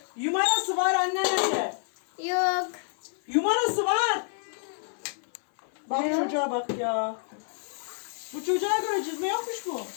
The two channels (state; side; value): silent; right; 59 dB below the other